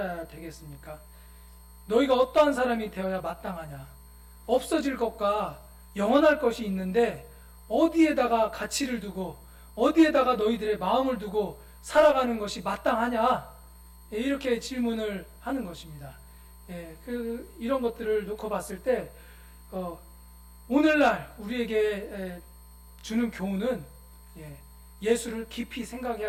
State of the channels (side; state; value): both; identical; correlation 1.00